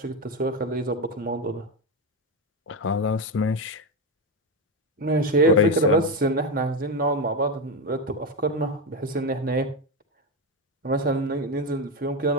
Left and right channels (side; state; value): both; normal; correlation 0.12